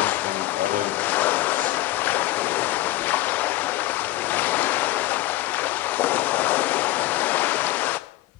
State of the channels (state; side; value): quieter; right; 16.1 dB